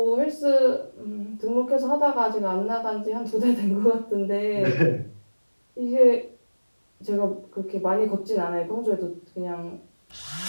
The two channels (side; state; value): both; inverted; correlation -1.00